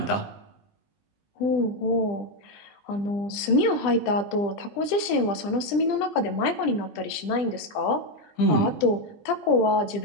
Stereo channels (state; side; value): late; right; 20 ms